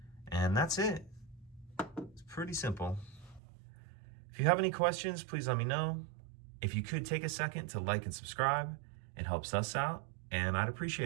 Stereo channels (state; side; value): drops out; left; at 3.4 s